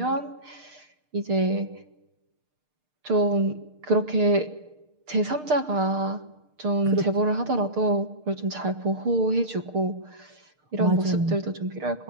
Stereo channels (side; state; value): left; late; 6.6 ms